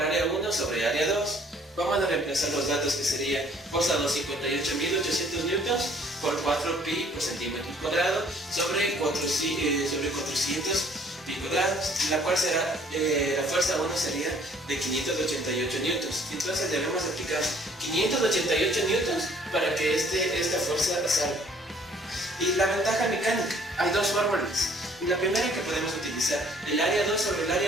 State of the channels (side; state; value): both; normal; correlation 0.59